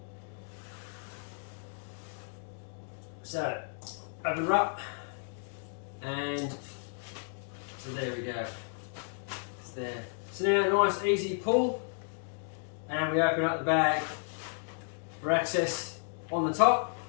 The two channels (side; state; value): right; silent; 56 dB below the other